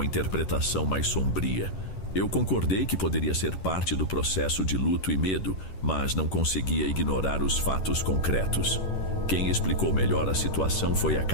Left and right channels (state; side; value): late; right; 11 ms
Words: interpretação mais sombria. Eu concordei que poderia ser parte do processo de luto e medo, mas não conseguia ignorar os fatos concretos. Quem explicou melhor a situação foi a